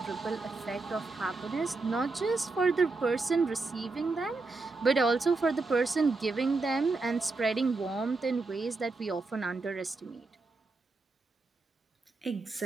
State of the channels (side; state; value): left; quieter; 3.6 dB